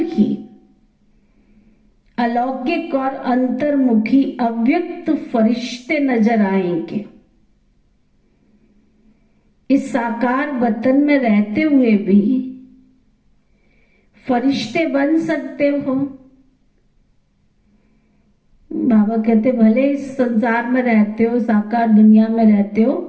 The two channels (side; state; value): both; identical; correlation 1.00